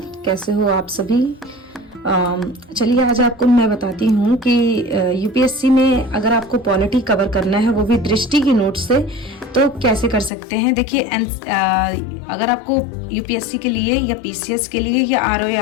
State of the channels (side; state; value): right; drops out; at 10.3 s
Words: कैसे हो आप सभी? चलिए आज आपको मैं बताती हूँ कि यूपीएससी में अगर आपको पॉलिटी कवर करना है, वो भी दृष्टि की नोट से, तो कैसे कर सकते हैं। देखिए अगर आपको यूपीएससी के लिए या पीसीएस के लिए या